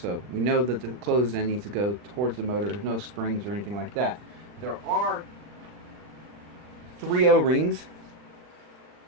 we know that the closed end needs to go towards the motor. There's no springs or anything like that. There are 3 O-rings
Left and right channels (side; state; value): left; late; 40 ms